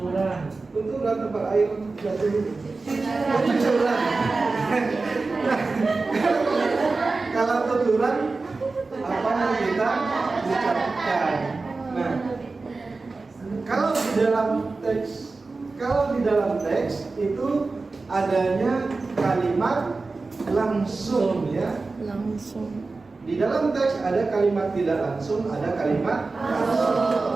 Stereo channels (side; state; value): left; quieter; 3.8 dB